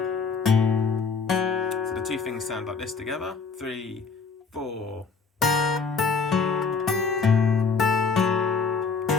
So the two things sound like this together. 3, 4.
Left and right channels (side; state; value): right; quieter; 5.0 dB